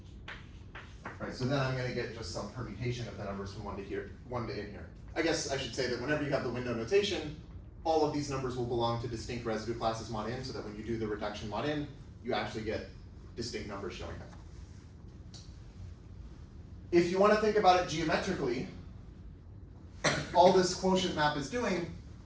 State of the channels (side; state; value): both; identical; correlation 1.00